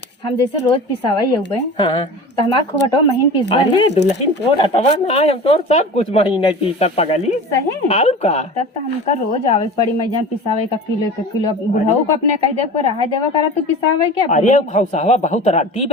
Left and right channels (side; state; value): both; normal; correlation 0.35